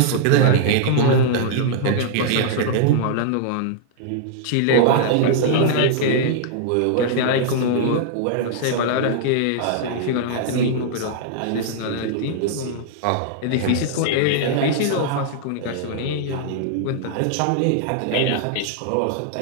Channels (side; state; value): both; different; correlation -0.01